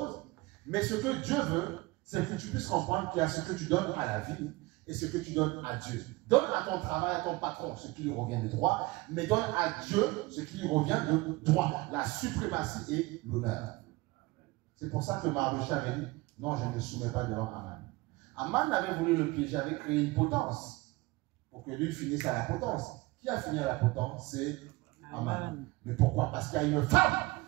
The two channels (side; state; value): left; quieter; 22.2 dB